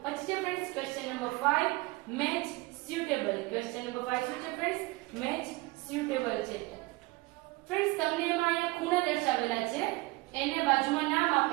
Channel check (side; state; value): left; quieter; 22.2 dB